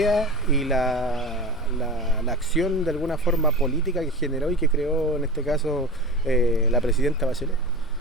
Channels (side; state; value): both; normal; correlation 0.28